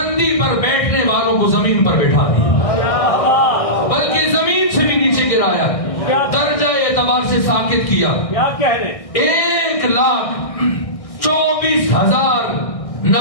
پر بیٹھنے والوں کو زمین پر بٹھا دیا، بلکہ زمین سے بھی نیچے گرایا، درجہ اعتبار سے ساکت کیا۔ کیا کہنے، 1,24,000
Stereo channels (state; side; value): late; right; 1.6 ms